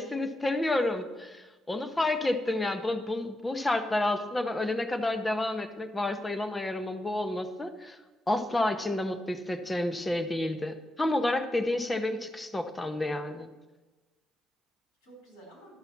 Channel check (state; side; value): normal; both; correlation 0.87